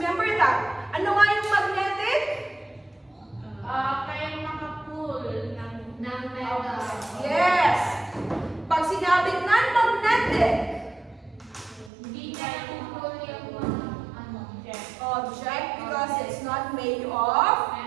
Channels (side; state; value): left; drops out; at 11.9 s